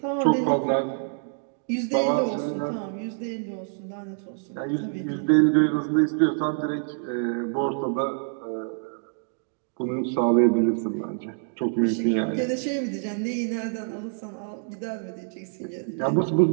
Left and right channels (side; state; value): left; silent; digital silence